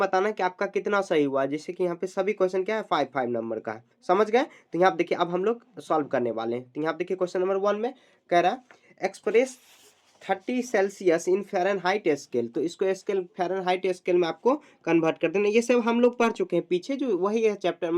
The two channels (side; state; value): both; identical; correlation 1.00